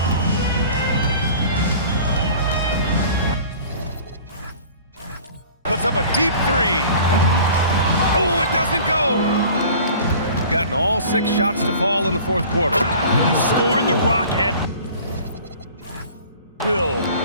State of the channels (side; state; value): both; inverted; correlation -0.45